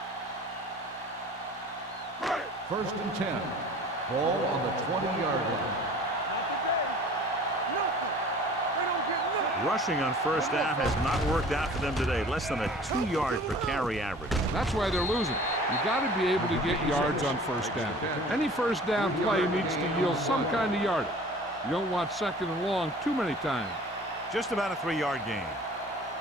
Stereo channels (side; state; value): both; normal; correlation 0.46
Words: First and 10. Ball on the 20-yard line. Rushing on first down has not worked out for them today. Less than a 2-yard per carry average. That's why they're losing. You got to be able to get yards on first down. Any first down play needs to yield some kind of yardage. You don't want second and long too many times. Just about a 3-yard gain.